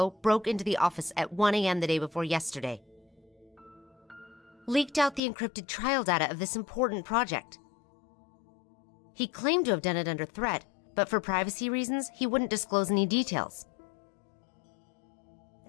broke into the office at 1 a.m. the day before yesterday. Leaked out the encrypted trial data of this important project. He claimed to have done it under threat, but for privacy reasons, he wouldn't disclose any details.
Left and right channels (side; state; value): right; drops out; at 5.2 s